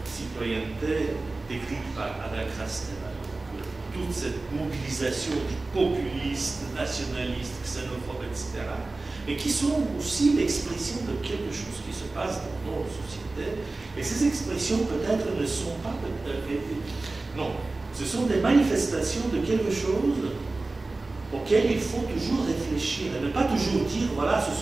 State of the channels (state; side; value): quieter; left; 3.3 dB